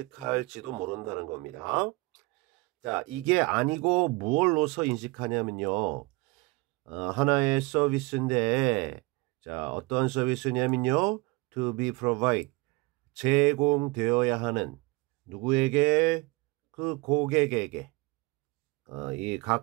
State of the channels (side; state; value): left; quieter; 24.7 dB